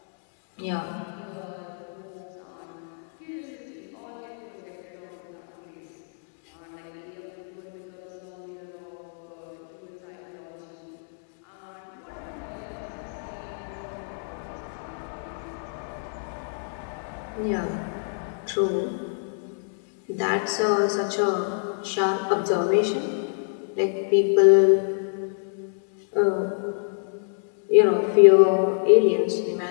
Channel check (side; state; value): right; silent; digital silence